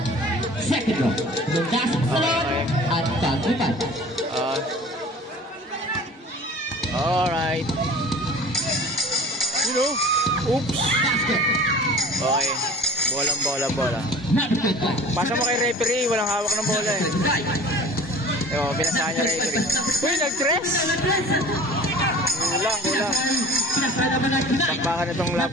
Second draw, lumasok sa loob at pag-upan. Alright. You know, oops. Basket. Okay. Bola. Pasa mo kay referee, walang hawak ng bola eh. Ewan, pinasahan niya referee. Uy, nag-dress! Kulang. Takpakan na itong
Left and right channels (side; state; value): both; normal; correlation 0.43